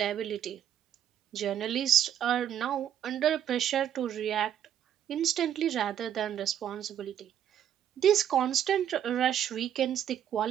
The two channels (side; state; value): left; quieter; 10.0 dB